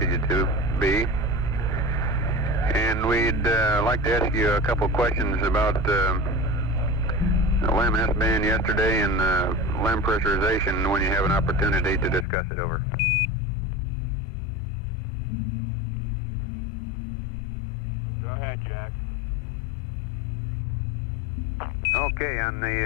you to be. And we'd like to ask you a couple questions about LEM S-band yesterday and LEM pressurization when you have an opportunity to discuss it, over. Go ahead, Jack. Okay, on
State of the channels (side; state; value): right; drops out; at 12.2 s